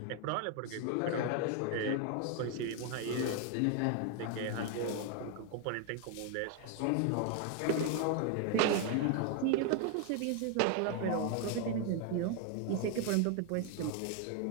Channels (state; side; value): different; both; correlation 0.01